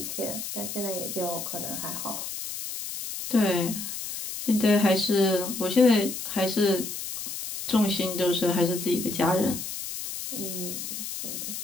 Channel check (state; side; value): noise; left; hiss, 7 dB below the sound